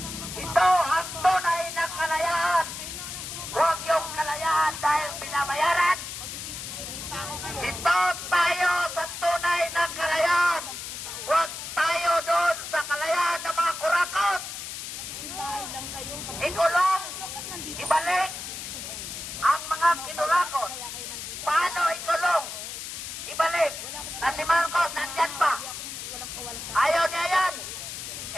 ito ang tunay na kalayaan. Huwag yung kalayaan dahil binabayaran. Ito tayo sa tunay na kalayaan. Huwag tayo doon sa kalayaan ng mga kurakot. Ikulong, ibalik ang mga kinurakot. Paano ikulong? Ibalik. Na si Marcos nandyan pa. Ayaw niya yan.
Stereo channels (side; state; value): left; noise; hiss, 8 dB below the sound